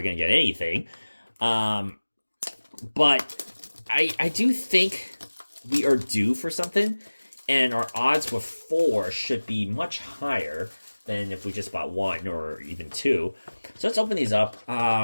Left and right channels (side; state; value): both; inverted; correlation -1.00